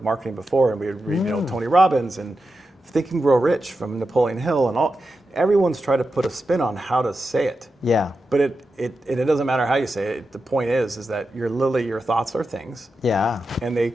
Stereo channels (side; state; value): both; normal; correlation 0.90